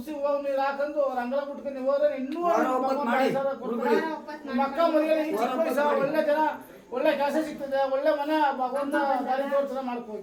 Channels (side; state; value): both; identical; correlation 1.00